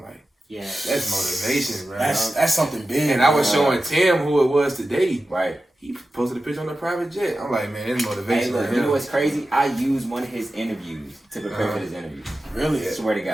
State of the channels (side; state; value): both; normal; correlation 0.93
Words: like, yeah, that's motivation, bro. That's something big. And I was showing Tim who it was today. Right. He posted a picture on the private jet. I'm like, man, it's motivation. Hey, look, you know what's crazy? I used one of his interviews to prepare for this interview. Really? I swear to